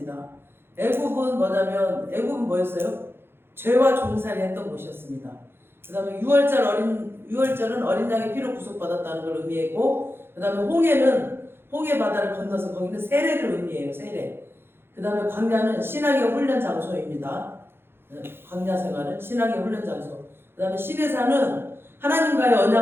애국은 뭐냐면, 애국은 뭐였어요? 죄와 종살이 했던 곳이었습니다. 그 다음에 유월절은 어린 양의 피로 구속받았다는 걸 의미했고, 그 다음에 홍해 바다를 건너서 거기는 세례를 의미해요. 세례. 그 다음에 광야는 신앙의 훈련 장소입니다. 광야 생활은 신앙의 훈련 장소. 그 다음에 시내산은 하나님과의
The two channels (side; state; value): left; late; 0.11 ms